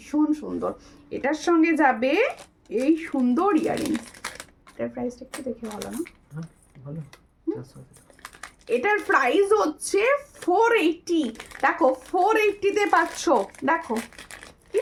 সুন্দর। এটার সঙ্গে যাবে এই সুন্দর ইয়ারিংস। এটার প্রাইসটা একটু দেখে ভালো না? ভালো। এটার প্রাইস হচ্ছে 480। দেখো 480-তে পাচ্ছ। দেখো কি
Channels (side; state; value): both; identical; correlation 1.00